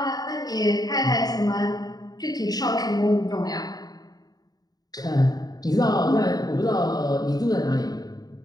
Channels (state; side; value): late; right; 0.19 ms